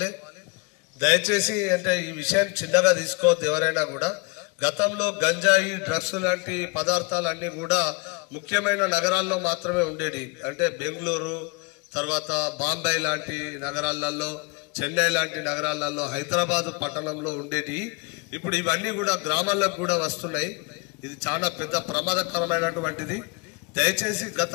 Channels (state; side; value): quieter; right; 29.2 dB